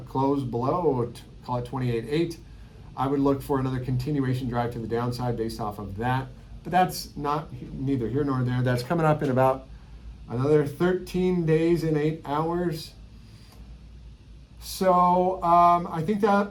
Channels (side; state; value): both; identical; correlation 1.00